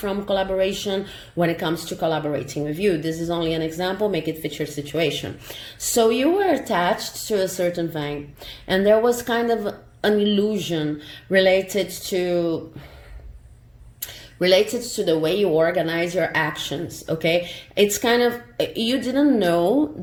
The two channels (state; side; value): identical; both; correlation 1.00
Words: collaboration when it comes to collaborating with you. This is only an example, make it fit your situation. So you were attached to a certain thing, and there was kind of an illusion related to the way you organize your actions. Okay, it's kind of, you didn't know